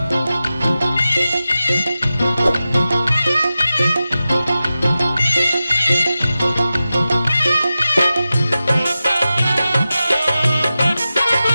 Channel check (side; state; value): both; inverted; correlation -0.93